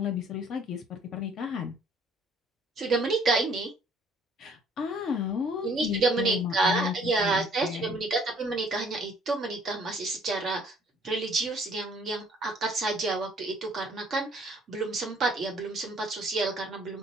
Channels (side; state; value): both; normal; correlation 0.59